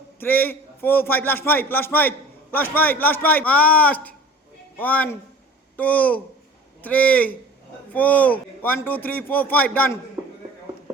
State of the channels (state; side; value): normal; both; correlation 0.43